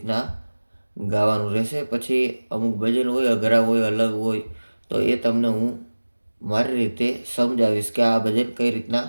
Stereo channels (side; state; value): both; inverted; correlation -1.00